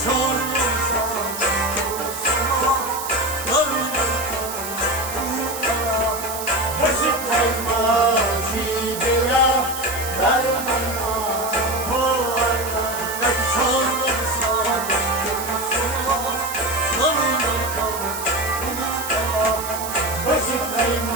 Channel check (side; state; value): right; noise; hiss, 8 dB below the sound